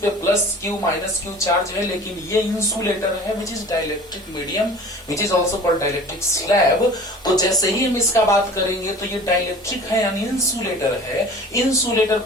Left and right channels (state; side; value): normal; both; correlation 0.43